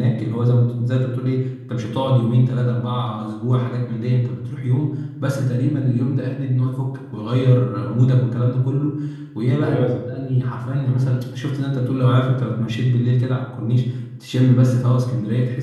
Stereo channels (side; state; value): both; identical; correlation 1.00